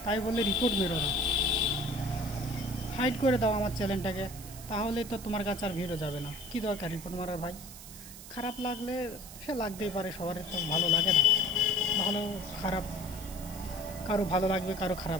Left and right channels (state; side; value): noise; right; hiss, 15 dB below the sound